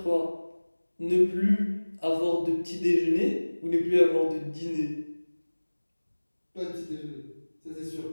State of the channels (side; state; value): both; inverted; correlation -1.00